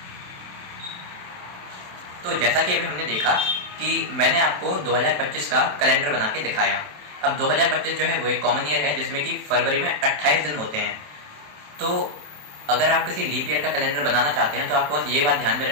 तो जैसा कि अभी हमने देखा कि मैंने आपको 2025 का कैलेंडर बना के दिखाया। अब 2025 जो है वो एक कॉमन ईयर है जिसमें कि फरवरी में 28 दिन होते हैं। तो अगर आप किसी लीप ईयर का कैलेंडर बनाना चाहते हैं तो आपको बस ये बात ध्यान में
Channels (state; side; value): late; left; 27 ms